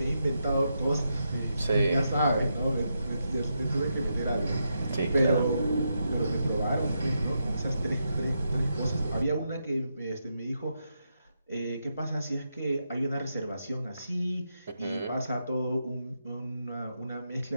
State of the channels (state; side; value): inverted; both; correlation -0.83